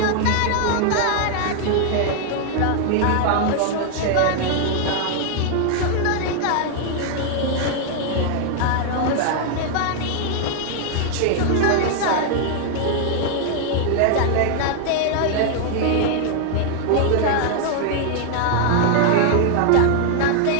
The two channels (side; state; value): both; different; correlation 0.00